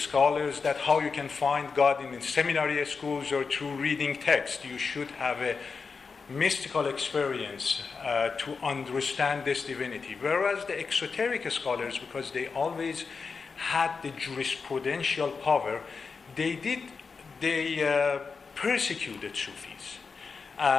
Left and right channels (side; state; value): right; quieter; 5.0 dB